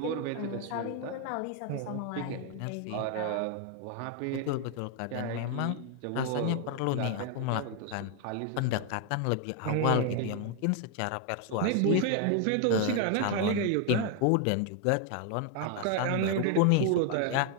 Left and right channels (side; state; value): both; different; correlation 0.01